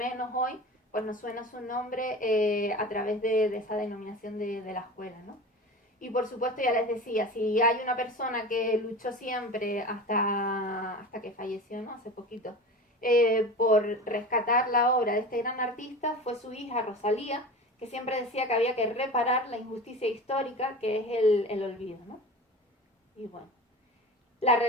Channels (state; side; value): normal; both; correlation 0.33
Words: hoy, pues nos suena su nombre a través de esa denominación de la escuela, ¿no? Y por supuesto, ya les decía, si hay una persona que luchó siempre hasta que falleció, ¿no?, hace poquito, por rescatar la obra de este gran artista, fue su hija Rosalía, que siempre decía que había que reparar la injusticia histórica que es el olvido, ¿no? Y bueno, la